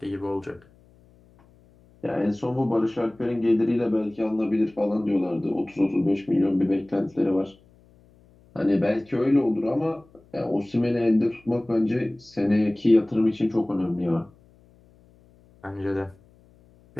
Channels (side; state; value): left; noise; hum, 29 dB below the sound